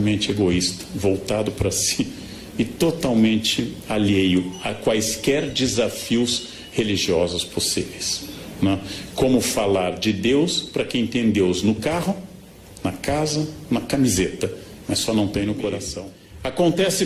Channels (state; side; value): identical; both; correlation 1.00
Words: egoísta, voltado para si e totalmente alheio a quaisquer desafios religiosos possíveis, né? Como falar de Deus para quem tem Deus no carro, na casa, na camiseta, mas só não tem no coração. Acontece